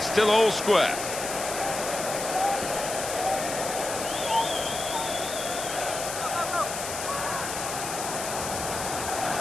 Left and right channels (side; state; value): left; noise; hiss, 6 dB below the sound